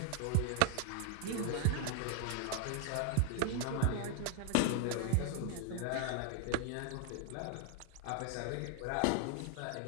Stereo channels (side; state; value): both; different; correlation 0.01